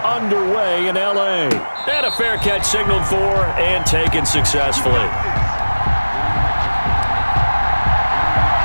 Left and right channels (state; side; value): inverted; both; correlation -1.00